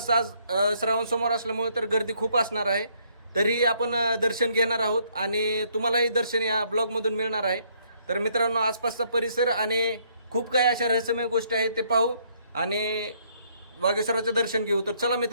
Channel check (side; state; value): both; inverted; correlation -0.68